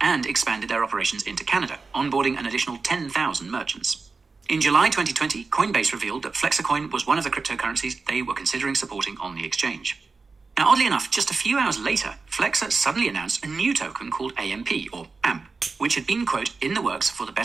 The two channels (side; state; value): left; quieter; 4.3 dB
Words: expanded their operations into Canada, onboarding an additional 10,000 merchants. In July 2020, Coinbase revealed that FlexaCoin was one of the cryptocurrencies they were considering supporting on the exchange. Now, oddly enough, just a few hours later, Flexa suddenly announced a new token called AMP, or AMP, which had been, quote, in the works for the